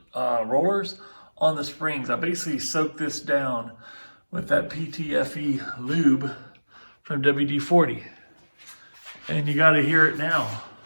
rollers, on the springs. I basically soaked this down with that PTFE lube from WD-40. And you gotta hear it now.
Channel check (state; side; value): inverted; both; correlation -1.00